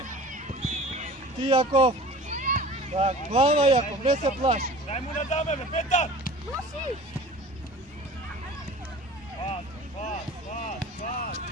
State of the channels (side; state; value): both; normal; correlation 0.42